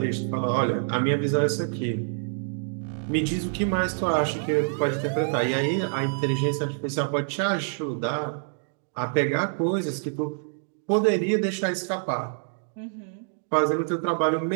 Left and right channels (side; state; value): left; silent; digital silence